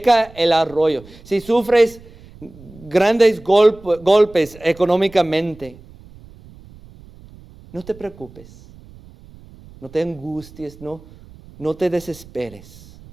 el arroyo, si sufres grandes golpes económicamente, no te preocupes, no te angusties, no te desesperes.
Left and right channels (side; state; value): right; noise; rumble, 22 dB below the sound